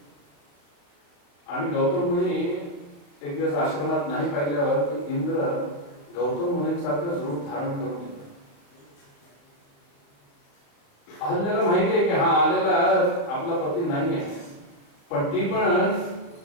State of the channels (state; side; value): late; right; 34 ms